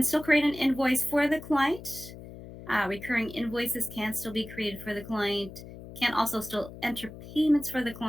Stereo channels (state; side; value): noise; left; hum, 14 dB below the sound